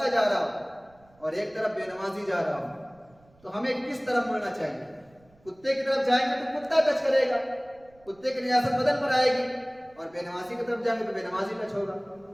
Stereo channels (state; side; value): noise; right; rumble, 30 dB below the sound